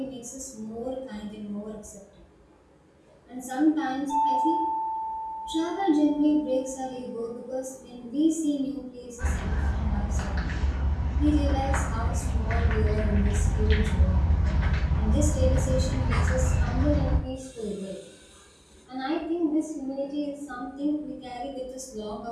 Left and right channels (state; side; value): identical; both; correlation 1.00